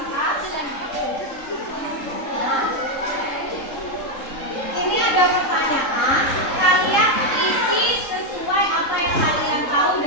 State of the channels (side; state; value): right; late; 3.7 ms